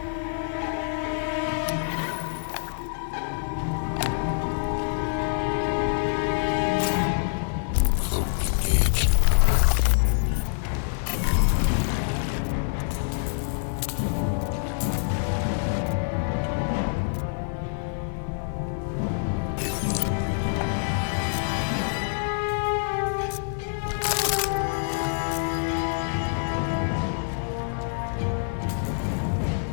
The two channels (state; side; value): silent; right; 57 dB below the other